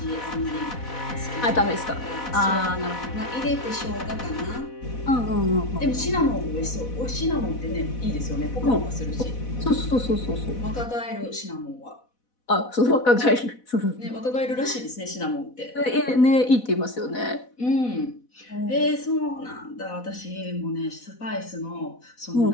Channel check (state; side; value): late; right; 4.1 ms